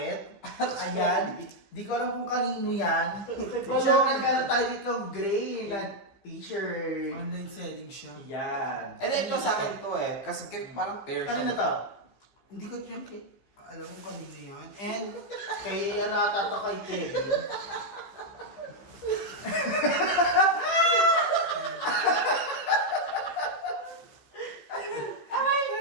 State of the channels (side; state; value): right; late; 15 ms